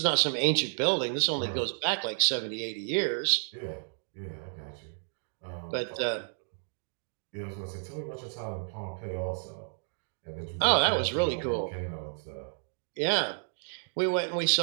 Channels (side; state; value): left; silent; digital silence